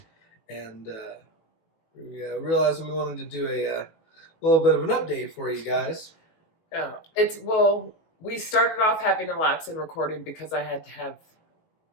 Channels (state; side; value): late; right; 19 ms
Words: and we realized we wanted to do a little bit of an update for you guys. Yeah, we started off having a lapse in recording because I had to have